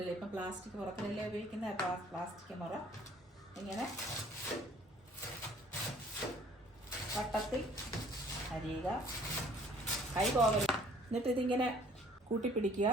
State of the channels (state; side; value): normal; both; correlation 0.56